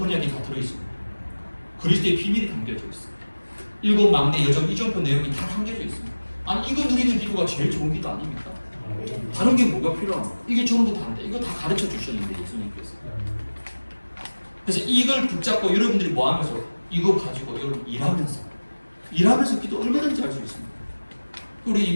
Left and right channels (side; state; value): both; inverted; correlation -1.00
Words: 다 들어있습니다. 그리스도의 비밀이 담겨져 있습니다. 7 막내 여정 이정표 내용이 다 담겨져 있습니다. 아니 이거 누리는 기도가 제일 좋은 기도 아닙니까? 다른 게 뭐가 필요합니까? 이게 전부 다인데 이거 다 가르쳐 주셨는데 예수님께서. 그래서 이걸 붙잡고 여러분들이 뭐 하면서 이거 가지고 여러분 일하면서 기도 얼마든지 할 수 있습니다. 우리